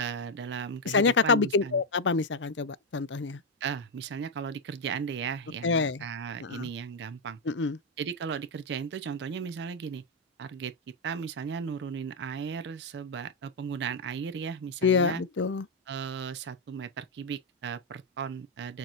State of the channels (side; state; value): both; normal; correlation 0.03